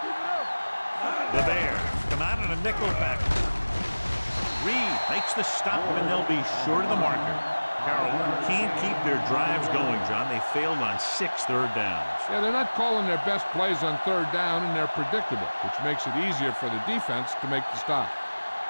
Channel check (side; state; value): both; inverted; correlation -1.00